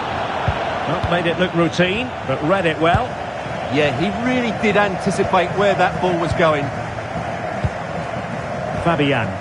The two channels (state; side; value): identical; both; correlation 1.00